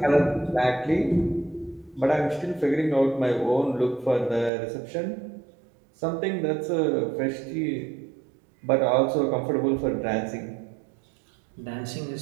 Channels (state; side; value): drops out; left; at 4.5 s